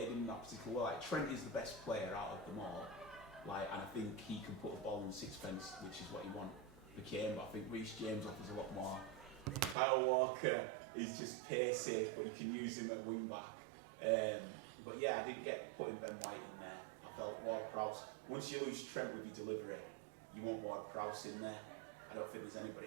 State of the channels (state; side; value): drops out; left; at 9.8 s